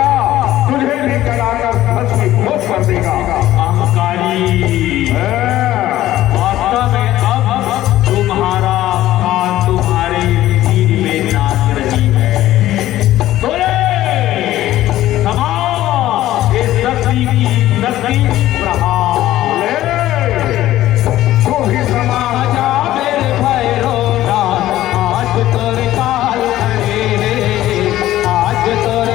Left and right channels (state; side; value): quieter; right; 14.4 dB